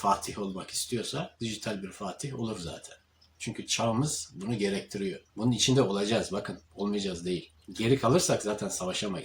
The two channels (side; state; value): both; identical; correlation 1.00